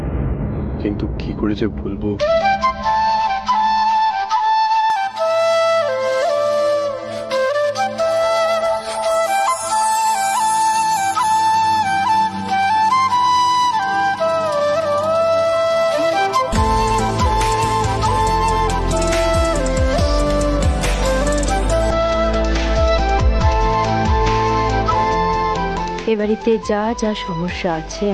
কিন্তু কি করে যে বলবো। এ বাড়িতে যা যা সমস্যা আছে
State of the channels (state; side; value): identical; both; correlation 1.00